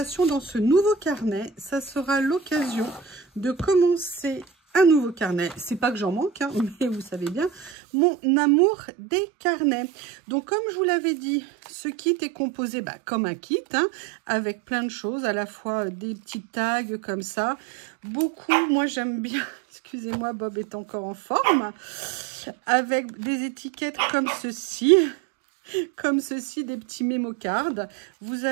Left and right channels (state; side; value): drops out; left; at 7.7 s